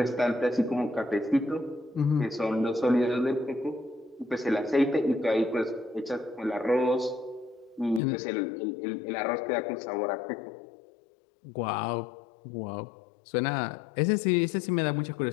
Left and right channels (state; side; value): drops out; right; at 8.0 s